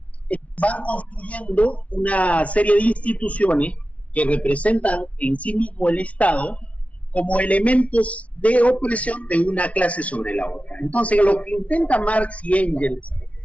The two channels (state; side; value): late; right; 0.065 ms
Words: van construyendo una serie de instituciones que representan en sí mismo el Estado como elementos de opresión de una clase sobre la otra. Entonces, lo que intenta Marx y Engels